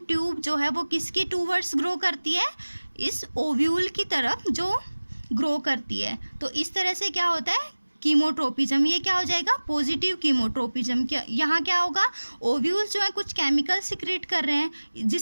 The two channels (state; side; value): inverted; both; correlation -1.00